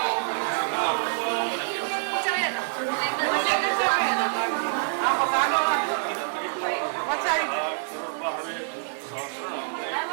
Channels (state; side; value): silent; left; 61 dB below the other